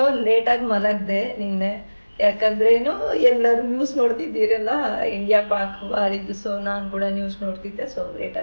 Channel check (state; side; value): inverted; both; correlation -1.00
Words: ಲೇಟಾಗಿ ಮಲಗಿದೆ ನಿನ್ನೆ. ಯಾಕಂದರೆ ಎಲ್ಲರೂ ನ್ಯೂಸ್ ನೋಡ್ತಿದ್ದೀರಲ್ಲ, ಇಂಡಿಯಾ ಪಾಕ್ ವಾರಿದ್ದು. ಸೊ ನಾನು ಕೂಡ ನ್ಯೂಸ್ ನೋಡ್ತಿದ್ದೆ. ಸೊ